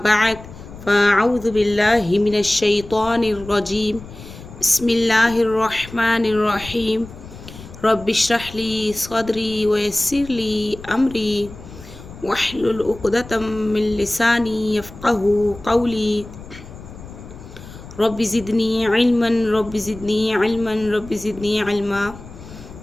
فأعوذ بالله من الشيطان الرجيم. بسم الله الرحمن الرحيم. رب اشرح لي صدري ويسر لي أمري واحلل عقدة من لساني يفقه قولي. رب زدني علما رب زدني علما رب زدني علما.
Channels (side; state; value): left; noise; rumble, 16 dB below the sound